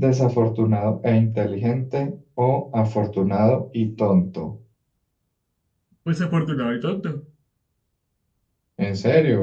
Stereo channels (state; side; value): identical; both; correlation 1.00